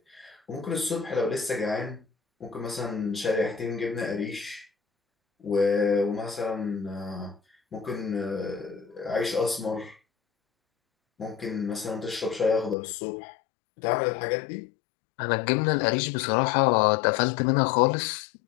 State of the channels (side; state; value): right; drops out; at 12.8 s